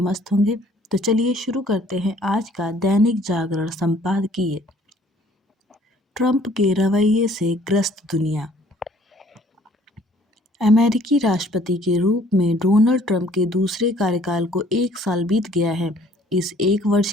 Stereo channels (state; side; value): normal; both; correlation 0.57